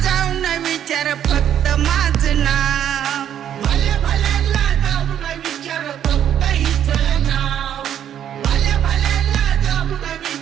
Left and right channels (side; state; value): left; quieter; 10.0 dB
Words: जाऊन विचार फक्त माझं नाव भल्या भल्यांना जाऊन विचार फक्त हिचं नाव भल्या भल्यांना जाऊन